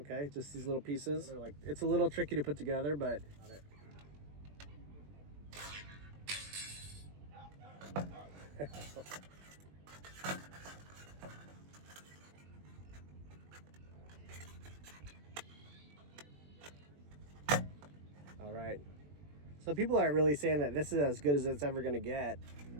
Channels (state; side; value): late; left; 21 ms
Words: just these little pieces. They're like, it's a little tricky to put together, but got it. All right, so people are really saying that this is as good as it's ever going to get.